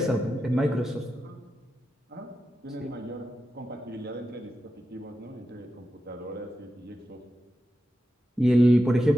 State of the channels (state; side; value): normal; both; correlation 0.90